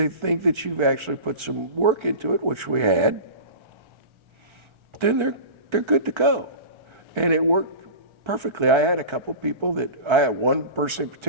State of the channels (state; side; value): late; left; 1.3 ms